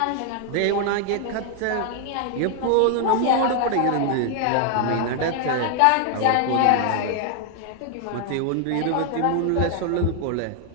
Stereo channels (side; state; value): both; different; correlation 0.00